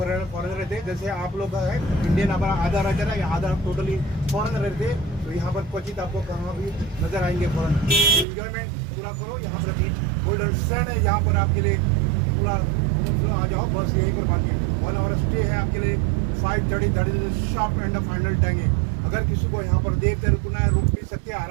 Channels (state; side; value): drops out; left; at 8.2 s